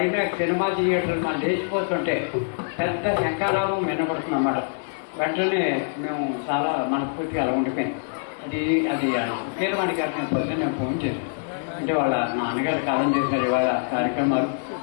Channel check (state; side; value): silent; right; digital silence